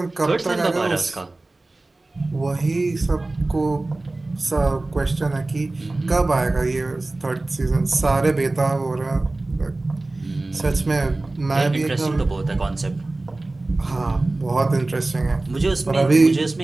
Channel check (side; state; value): left; quieter; 3.0 dB